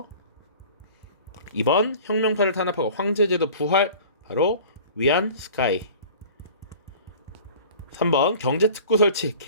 2번 혁명파를 탄압하고 황제제도 부활, 바로 위안 스카이. 3번 경제특구 설치,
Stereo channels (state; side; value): inverted; both; correlation -0.44